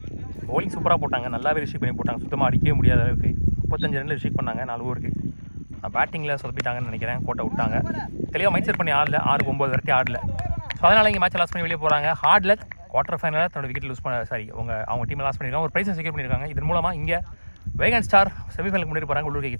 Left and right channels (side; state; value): both; inverted; correlation -1.00